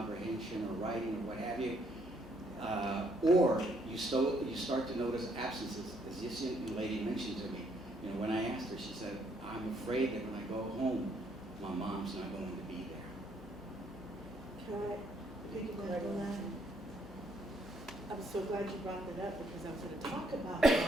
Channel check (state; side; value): normal; both; correlation 0.70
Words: or writing or what have you, or you start to notice absences, as this young lady mentioned to me. You know, when I asked her, she said, I'm afraid that when I go home, my mom's not going to be there. Can I piggyback on that? I'm so glad you brought that up, because I was going to talk about